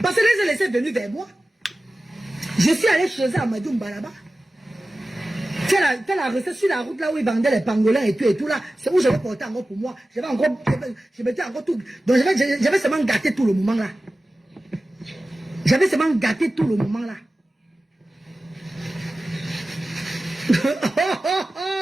Parce que les laissés venus vers moi. Je suis allé chez eux à Madoumba là-bas. Fais la recette sur la route là où ils vendaient les pangolins et tout là. C'est où j'avais porté encore pour moi. Je mettais encore tout. Donc j'avais seulement gâté tout le moment là. J'avais seulement gâté tout le moment là.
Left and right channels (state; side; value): normal; both; correlation 0.95